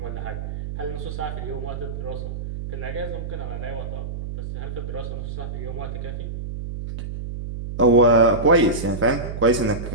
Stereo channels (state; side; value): noise; right; hum, 6 dB below the sound